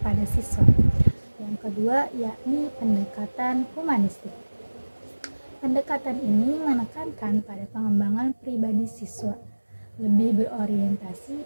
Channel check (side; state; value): both; inverted; correlation -1.00